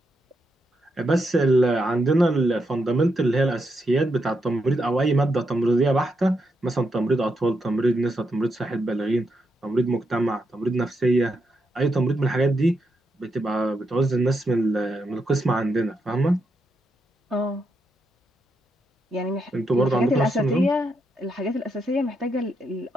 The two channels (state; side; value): normal; both; correlation 0.82